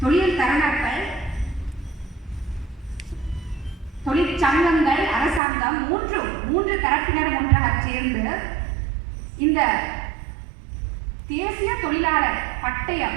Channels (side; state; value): left; drops out; at 5.4 s